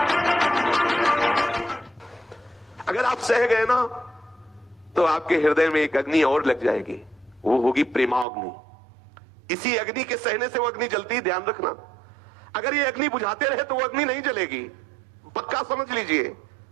अगर आप सह गए ना तो आपके हृदय में एक अग्नि और लग जाएगी, वो होगी प्रेमाग्नि। इसी अग्नि के सहने से वो अग्नि जलती है, ध्यान रखना। अगर ये अग्नि बुझाते रहे तो वो अग्नि नहीं जलेगी, पक्का समझ लीजिए,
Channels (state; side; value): drops out; left; at 8.2 s